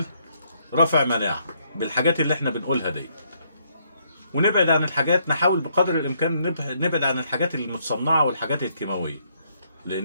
رفع مناعه بالحاجات اللي احنا بنقولها دي. ونبعد عن الحاجات، نحاول بقدر الامكان نبعد عن الحاجات المتصنعه والحاجات الكيماويه،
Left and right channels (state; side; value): inverted; both; correlation -0.71